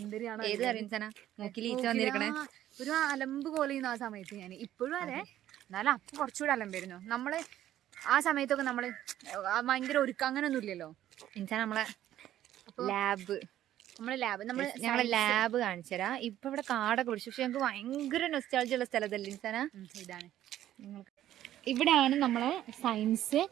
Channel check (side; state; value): left; quieter; 12.5 dB